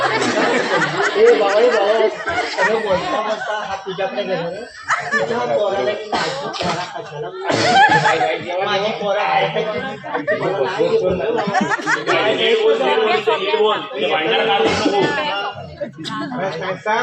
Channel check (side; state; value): both; identical; correlation 1.00